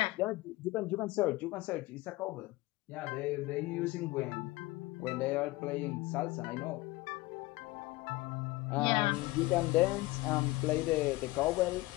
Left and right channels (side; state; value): right; quieter; 20.4 dB